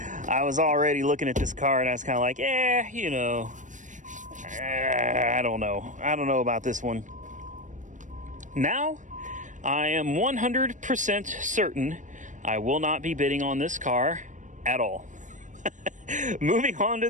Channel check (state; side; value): late; left; 0.37 ms